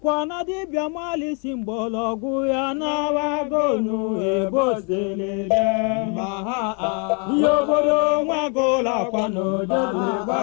na dibia mali simbologu ya na wagonu ebosele maha Yobodo mwagola kwano jodle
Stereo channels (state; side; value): quieter; right; 36.8 dB